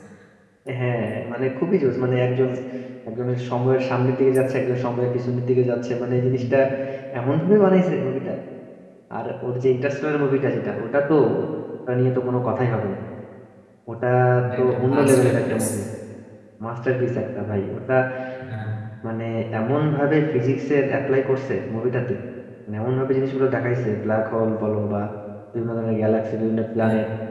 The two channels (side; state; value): both; identical; correlation 1.00